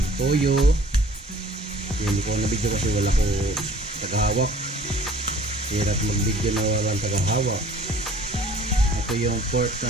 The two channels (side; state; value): both; normal; correlation 0.51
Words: toyo. Hindi ko nabidyo kasi wala ko tagahawak. Hirap mag-video na walang tagahawak. Ito yung pork na